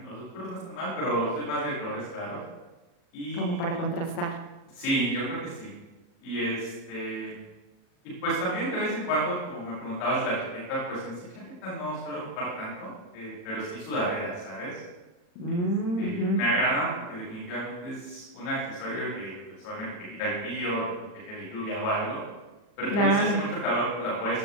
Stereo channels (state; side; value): late; right; 40 ms